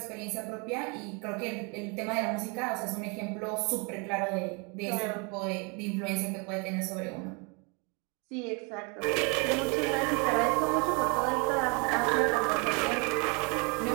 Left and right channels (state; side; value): quieter; left; 32.3 dB